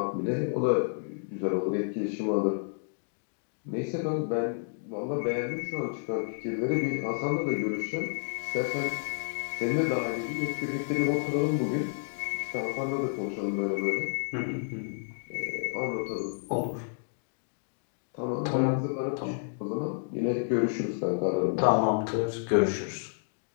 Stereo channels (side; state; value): right; silent; digital silence